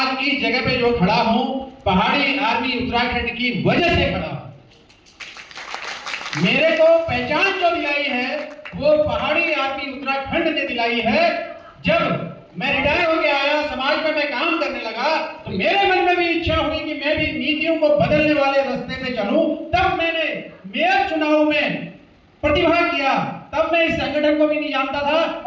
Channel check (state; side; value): identical; both; correlation 1.00